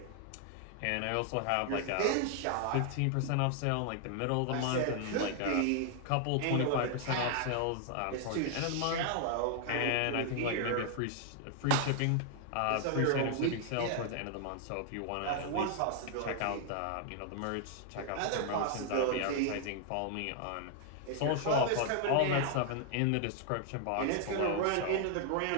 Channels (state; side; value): different; both; correlation 0.00